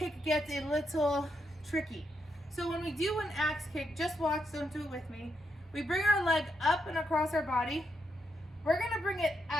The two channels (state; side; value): normal; both; correlation 0.81